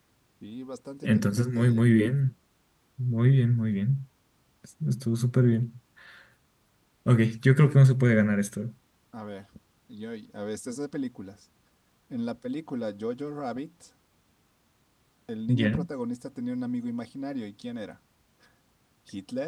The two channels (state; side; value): identical; both; correlation 1.00